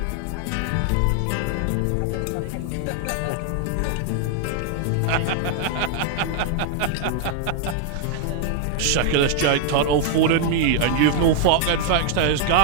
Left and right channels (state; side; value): different; both; correlation 0.00